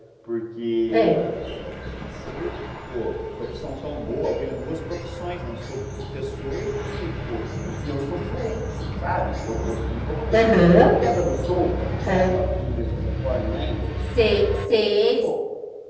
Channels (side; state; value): both; identical; correlation 1.00